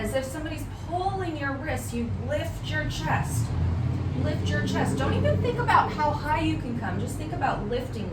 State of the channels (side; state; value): both; identical; correlation 1.00